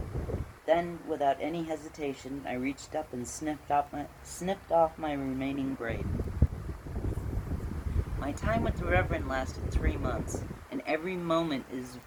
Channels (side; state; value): both; identical; correlation 1.00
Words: Then, without any hesitation, I reached up and snipped off my remaining braid. My time with the Reverend lasted 3 months, and every moment is...